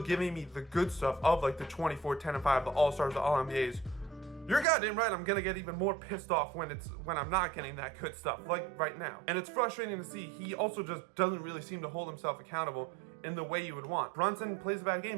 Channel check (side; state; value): left; drops out; at 4.7 s